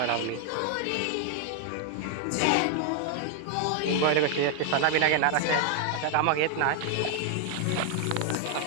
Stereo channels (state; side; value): different; both; correlation 0.00